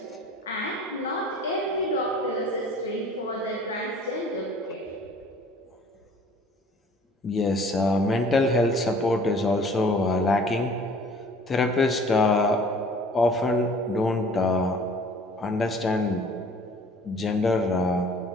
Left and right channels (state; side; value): normal; both; correlation 0.51